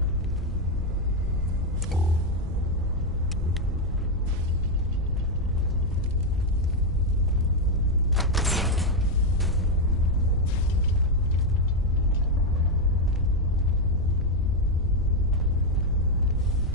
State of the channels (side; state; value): both; normal; correlation 0.04